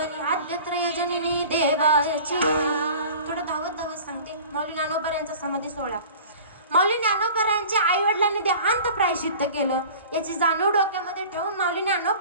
आद्यत्रय जननी देवाची. थोडं धावत सांगते. माऊली ज्ञानोबा समाधी सोहळा. माऊली ज्ञानोबा यांच्या आई वडिलांनी देहांत प्रायश्चित्त केलं. याची जाणीव डोक्यामध्ये ठेवून माऊली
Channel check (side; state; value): both; inverted; correlation -0.42